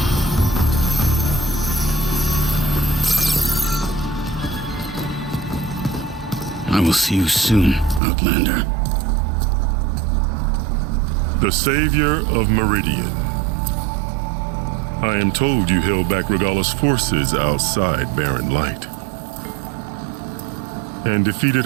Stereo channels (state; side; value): drops out; left; at 8.0 s